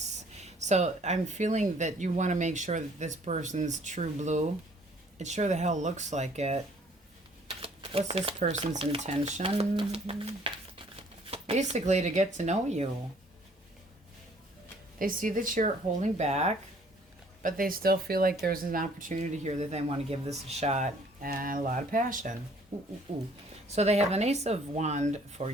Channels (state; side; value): normal; both; correlation 0.59